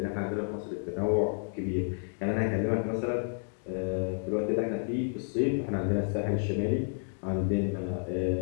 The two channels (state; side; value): silent; right; digital silence